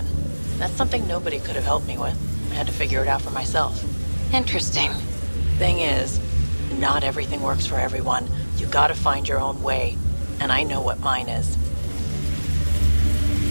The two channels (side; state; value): both; inverted; correlation -1.00